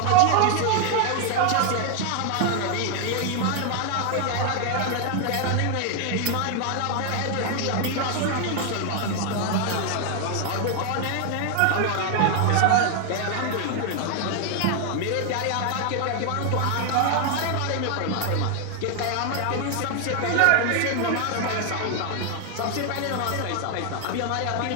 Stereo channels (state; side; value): different; both; correlation 0.00